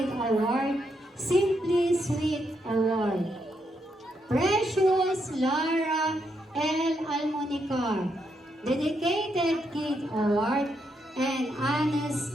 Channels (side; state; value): both; normal; correlation 0.79